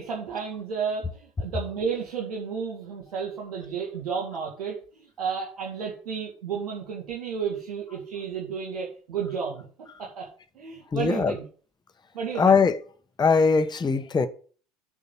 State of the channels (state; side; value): normal; both; correlation 0.61